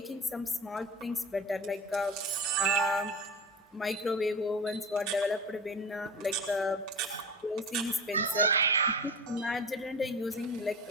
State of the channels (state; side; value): normal; both; correlation 0.31